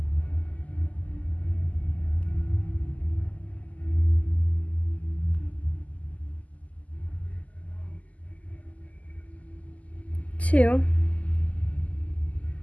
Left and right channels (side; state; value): right; late; 0.072 ms